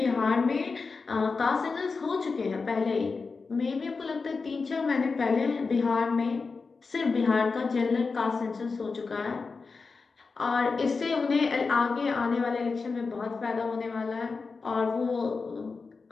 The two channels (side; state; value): right; quieter; 4.5 dB